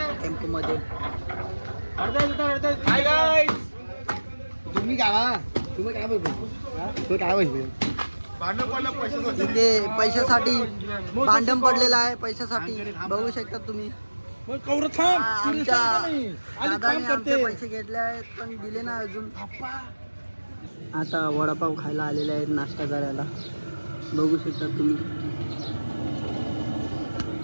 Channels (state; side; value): inverted; both; correlation -1.00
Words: टेम्पोमध्ये. तुम्ही काय बोलतो इथे पैशासाठी भांडण पडलेलं आहे. पैशासाठी बघू शकता तुम्ही. आमच्या दादाने आमचे पैसे घेतले आहेत पण दिले नाही अजून. आता वडापाव खायला आलेले आहेत नाश्ता करायला. बघू शकता तुम्ही.